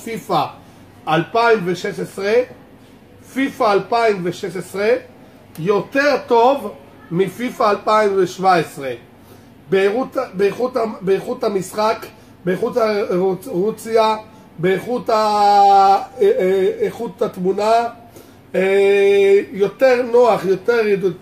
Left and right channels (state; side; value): identical; both; correlation 1.00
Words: 2016. פיפא 2016 יותר טוב מפיפא 2017 באיכות המשחק, באיכות הרוציה, באיכות התמונה, יותר נוח, יותר